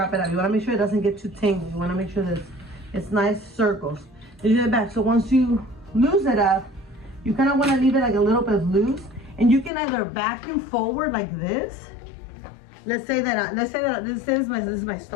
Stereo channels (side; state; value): right; drops out; at 9.7 s